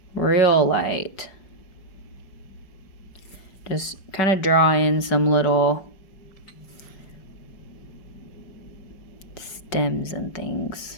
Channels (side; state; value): right; late; 5.3 ms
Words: real light, just kind of draw in some little stems and things.